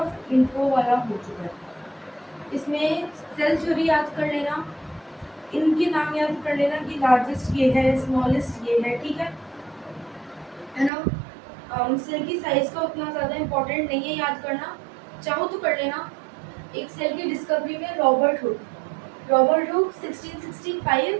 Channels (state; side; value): drops out; left; at 10.9 s